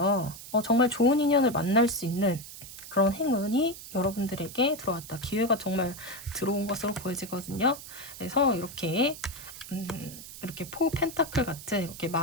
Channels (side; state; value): right; noise; hiss, 13 dB below the sound